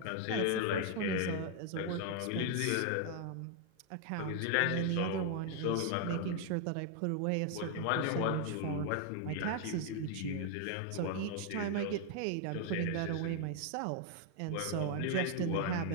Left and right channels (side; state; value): both; different; correlation 0.00